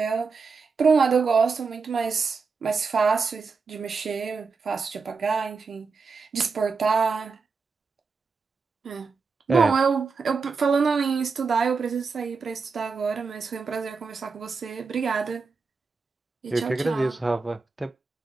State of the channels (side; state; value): left; quieter; 4.8 dB